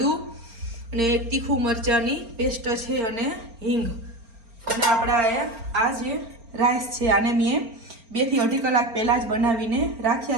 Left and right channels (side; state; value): left; late; 4.3 ms